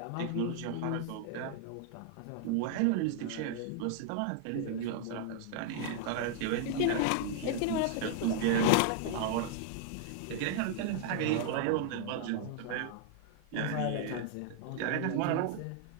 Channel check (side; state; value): both; different; correlation -0.01